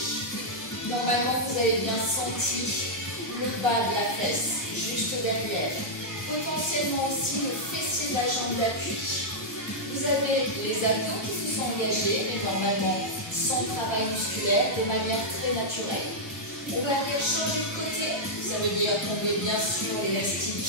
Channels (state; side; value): late; right; 1.3 ms